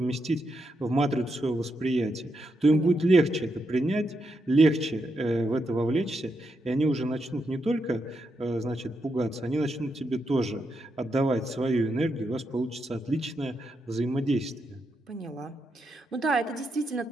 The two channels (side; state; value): both; normal; correlation 0.83